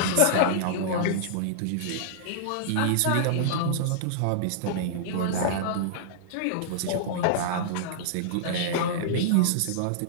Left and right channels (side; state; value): both; different; correlation -0.02